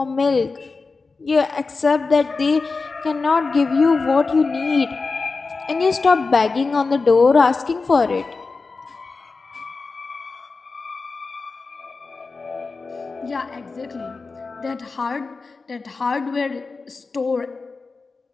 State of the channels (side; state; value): right; quieter; 4.1 dB